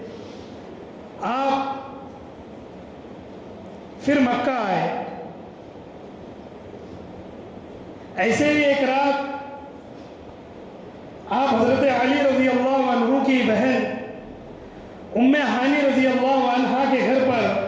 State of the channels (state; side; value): identical; both; correlation 1.00